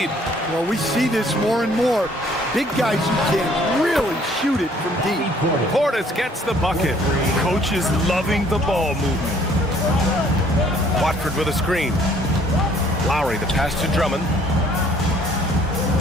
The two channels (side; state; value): both; normal; correlation 0.60